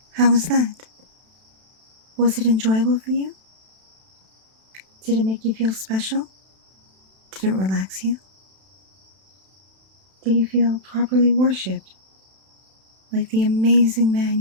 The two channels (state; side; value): late; left; 32 ms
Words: how was that? Was it enjoyable for you? Did it make you feel special? Did it relax you? Did you feel properly worshipped, like the amazing man